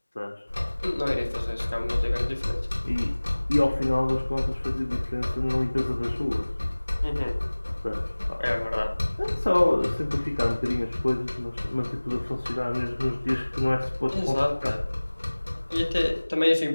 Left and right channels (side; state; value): both; inverted; correlation -1.00